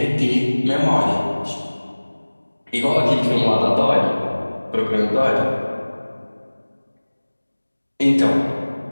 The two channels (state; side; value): inverted; both; correlation -1.00